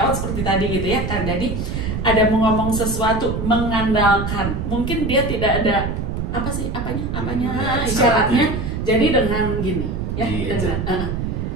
seperti tadi gitu ya kan, jadi ada mau ngomong sesuatu mengandalkan, mungkin dia tidak ada apanya Ada isyaratnya, isyaratnya. jadi dengan gini ya Di dengan eja.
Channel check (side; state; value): right; noise; rumble, 3 dB below the sound